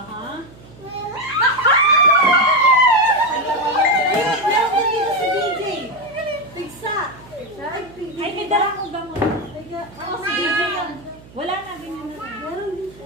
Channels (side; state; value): right; noise; hum, 22 dB below the sound